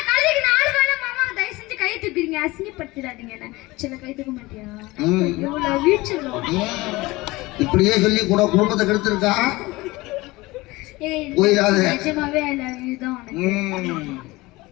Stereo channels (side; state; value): right; quieter; 21.0 dB